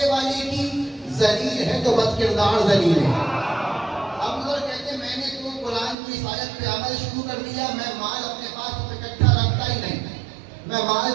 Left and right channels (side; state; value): left; drops out; at 6.0 s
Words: والے کی، ذلیل ہے تو بد کردار ذلیل ہے۔ اب ادھر کہتے ہیں میں نے تو قرآن کی اس آیت پہ عمل شروع کر دیا، میں مال اپنے پاس اکٹھا رکھتا ہی نہیں، میں مال